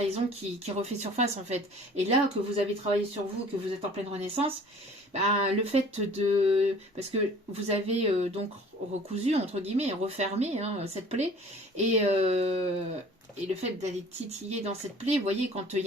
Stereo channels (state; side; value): normal; both; correlation 0.49